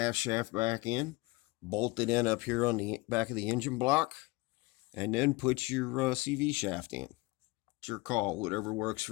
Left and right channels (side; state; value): right; quieter; 23.3 dB